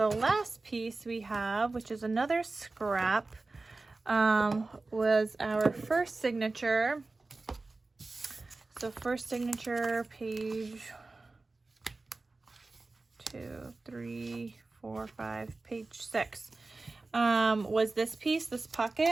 last piece we have, which is another scrap, was our first signature. So first signature, page 2, 3, 4, 5, page 6, was this piece, this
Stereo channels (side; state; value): left; quieter; 3.4 dB